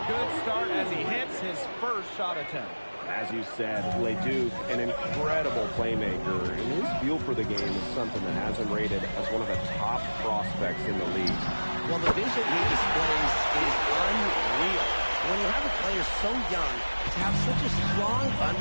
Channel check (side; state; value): both; inverted; correlation -1.00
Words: good start as he hits his first shot attempt. As you said, Leduc, an incredible playmaker, and his feel for the game is something that has him rated as one of the top prospects in the league. Well, the vision he displays is unreal. When you have a player so young, to have such a strong